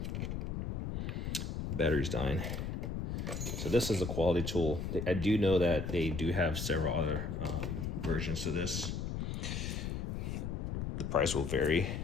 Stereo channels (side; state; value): left; noise; rumble, 3 dB below the sound